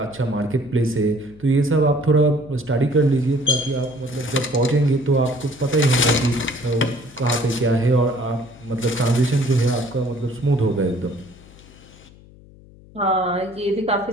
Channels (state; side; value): noise; left; hum, 23 dB below the sound